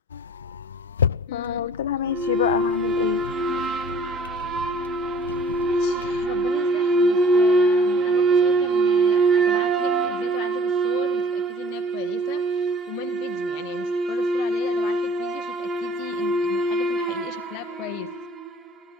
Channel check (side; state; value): both; normal; correlation 0.51